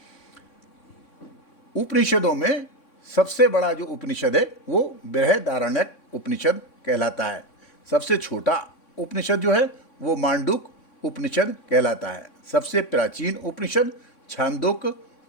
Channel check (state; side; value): late; right; 3.6 ms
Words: उपनिषदों में सबसे बड़ा जो उपनिषद है वो बृहदारण्यक उपनिषद कहलाता है। सबसे छोटा उपनिषद जो है वो मांडूक उपनिषद कहलाता है। सबसे प्राचीन उपनिषद छांदोग्य